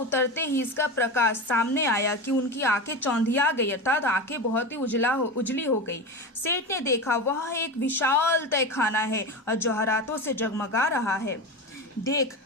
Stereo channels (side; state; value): both; normal; correlation 0.23